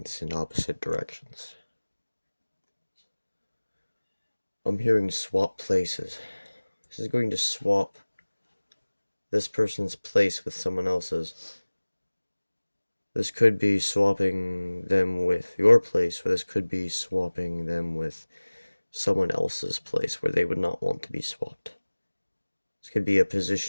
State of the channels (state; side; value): inverted; both; correlation -1.00